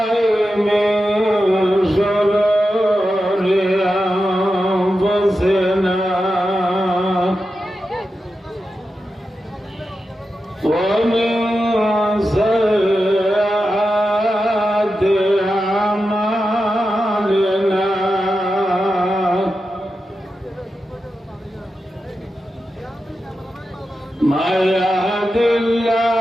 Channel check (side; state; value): both; normal; correlation 0.90